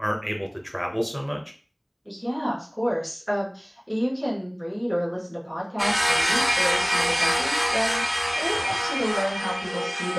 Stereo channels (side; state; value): both; identical; correlation 1.00